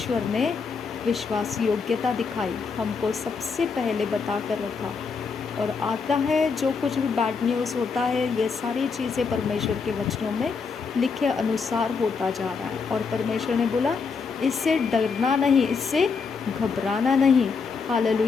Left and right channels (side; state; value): right; quieter; 5.2 dB